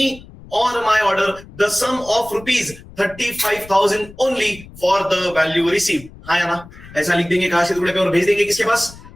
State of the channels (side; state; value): left; noise; rumble, 19 dB below the sound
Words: or my order the sum of rupees 35,000 only for the value received. हाँ या ना? ऐसा लिख देंगे काश के टुकड़े पे और भेज देंगे किसके पास?